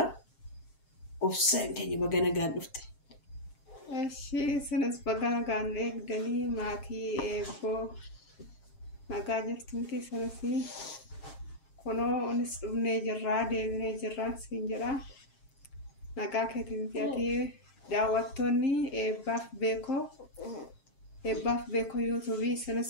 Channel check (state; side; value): late; right; 7.5 ms